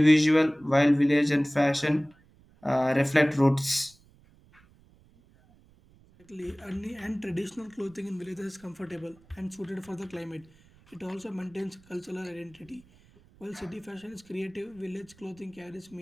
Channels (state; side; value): noise; right; rumble, 28 dB below the sound